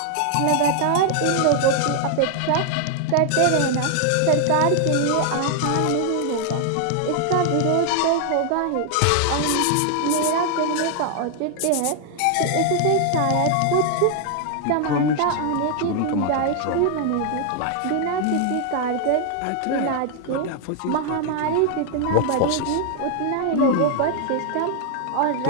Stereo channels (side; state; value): both; different; correlation 0.00